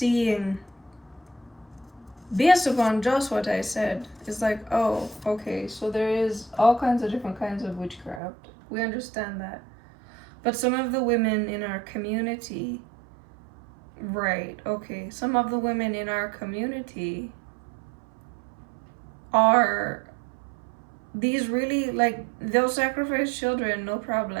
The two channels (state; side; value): drops out; left; at 8.2 s